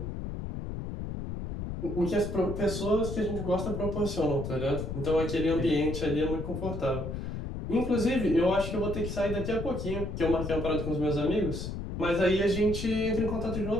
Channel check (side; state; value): left; noise; rumble, 5 dB below the sound